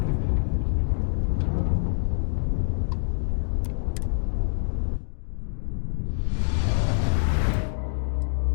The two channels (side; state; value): right; silent; digital silence